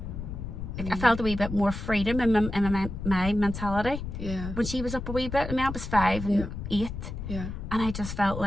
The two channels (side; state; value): left; noise; rumble, 7 dB below the sound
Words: Like, I felt a wee bit more freedom in my mentality. Yeah. When she was up a wee bit, I mean, I was 5 and 8. Yeah. And I just felt